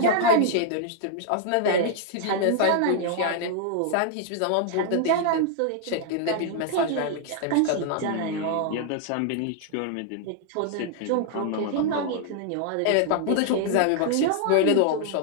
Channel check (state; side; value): different; both; correlation 0.00